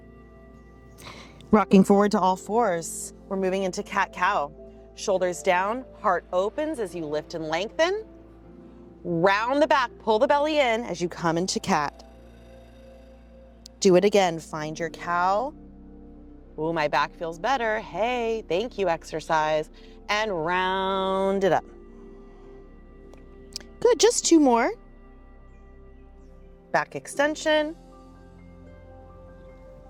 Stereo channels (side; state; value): both; identical; correlation 1.00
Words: Rocking forward to all fours. We're moving into cat-cow. Shoulders down, heart opens as you lift and lengthen. Round the back, pull the belly in as you come into cat. Do it again, find your cow. Ooh, my back feels better. Hey, thank you, exercise. And round it up. Good, just 2 more. Back extension.